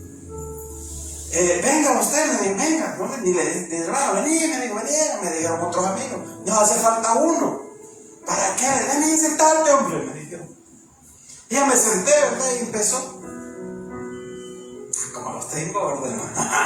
Venga usted, me dijo, venga. ¿No? Vení, me dijo, me dijeron otros amigos. Nos hace falta uno. ¿Para qué? Ven y sentarte, hombre, me dijeron. Y ya me senté, ¿verdad? Y empezó. Como los tengo, ¿verdad?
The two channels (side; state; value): both; identical; correlation 1.00